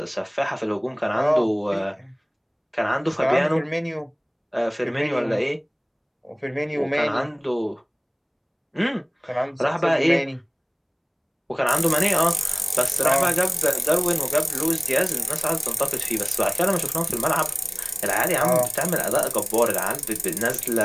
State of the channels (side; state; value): both; identical; correlation 1.00